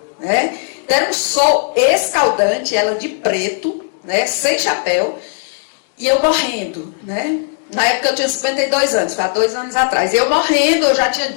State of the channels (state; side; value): silent; right; digital silence